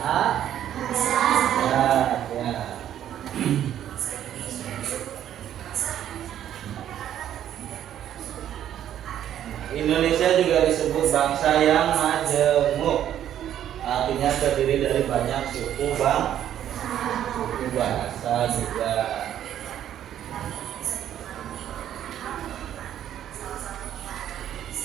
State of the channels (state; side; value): quieter; left; 10.8 dB